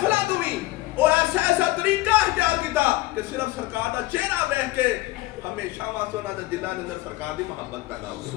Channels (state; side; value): quieter; right; 18.6 dB